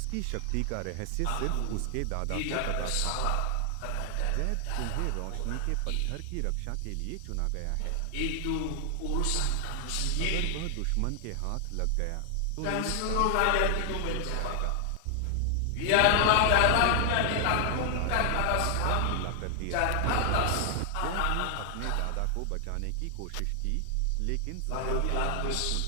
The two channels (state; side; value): different; both; correlation 0.00